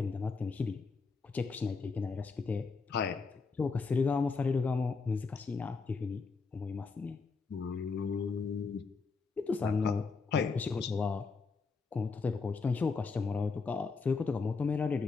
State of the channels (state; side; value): quieter; right; 4.6 dB